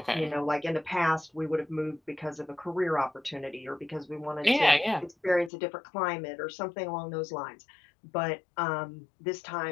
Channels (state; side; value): drops out; right; at 5.5 s